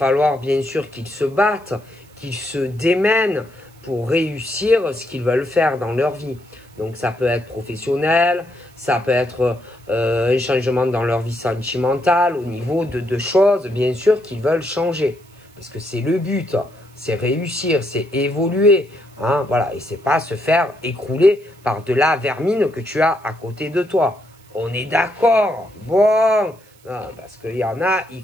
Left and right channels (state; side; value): noise; right; hiss, 29 dB below the sound